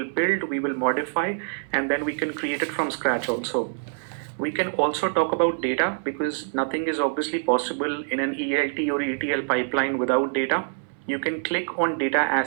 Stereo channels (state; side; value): silent; left; 62 dB below the other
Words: build, we will modify, and then we can create it from scratch also. We can also talk about data because nothing is obviously possible in an ELT or ETL pipeline without data. You can click on data